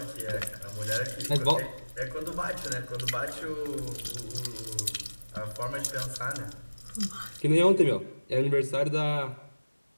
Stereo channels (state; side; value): inverted; both; correlation -1.00